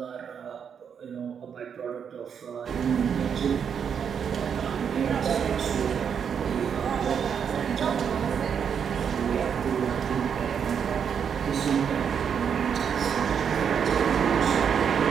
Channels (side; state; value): left; quieter; 7.4 dB